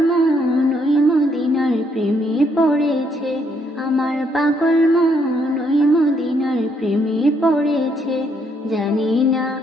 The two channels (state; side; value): normal; both; correlation 0.72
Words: মন ওই মদিনার প্রেমে পড়েছে। আমার পাগল মন ওই মদিনার প্রেমে পড়েছে। জানি না